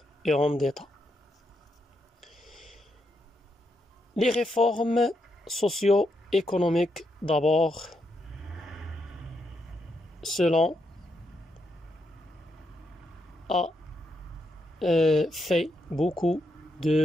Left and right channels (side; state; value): both; normal; correlation 0.80